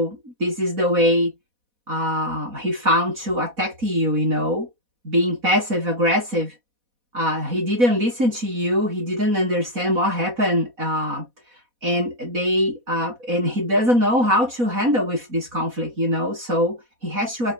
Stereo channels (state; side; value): late; left; 4.1 ms